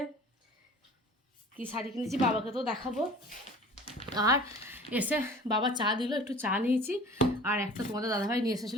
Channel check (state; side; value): normal; both; correlation 0.44